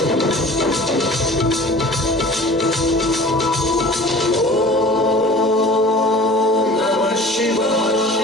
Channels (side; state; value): both; normal; correlation 0.43